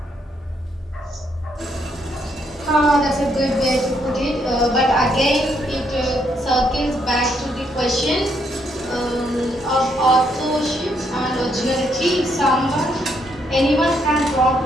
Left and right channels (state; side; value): normal; both; correlation 0.74